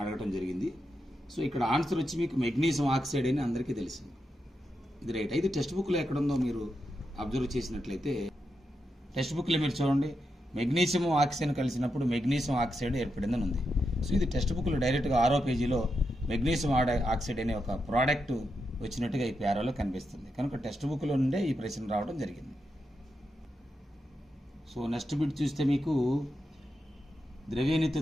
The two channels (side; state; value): both; normal; correlation 0.86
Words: అడగటం జరిగింది. సో ఇక్కడ ఆన్సర్ వచ్చి మీకు మెగ్నీషియం ఆక్సైడ్ అని అందరికీ తెలిసింది. ఇది రైట్. అయితే టెక్స్ట్ బుక్లో ఎక్కడుందో మీరు అబ్జర్వ్ చేసినట్లయితే టెక్స్ట్ బుక్లో మీరు చూడండి, మెగ్నీషియం ఆక్సిజన్ కలిసినప్పుడు మెగ్నీషియం ఆక్సైడ్ ఏర్పడిందని ఉంది. సో ఇది టెక్స్ట్ బుక్లో డైరెక్ట్గా 6వ పేజీలో మెగ్నీషియం ఆక్సైడ్ అనే ఒక ప్రోడక్ట్ వచ్చినట్టుగా ఈ పేరాలో కనిపిస్తుంది. కనుక టెక్స్ట్ బుక్లో నుండే ఈ ప్రశ్న రావడం జరిగింది. సో నెక్స్ట్ బిట్ చూస్తే మీకు